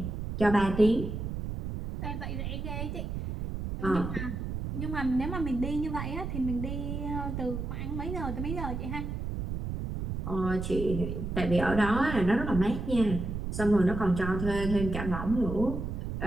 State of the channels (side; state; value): right; noise; rumble, 4 dB below the sound